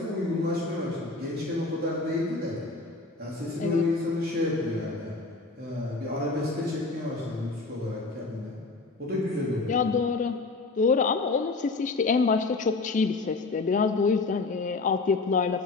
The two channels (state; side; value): quieter; right; 3.6 dB